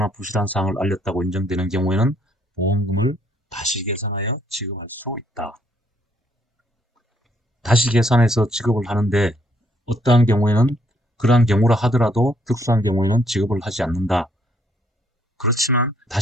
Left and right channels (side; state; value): both; normal; correlation 0.69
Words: 부실한 사항을 알렸다고 인정되는 경우에는 보험금을 다시 계산하여 지급할 수 있다. 다시 계산해서 지급을 하는데 어떠한 경우에는 그러한 경우라 하더라도 특수한 경우에는 지급을 하지 않는다. 그렇지만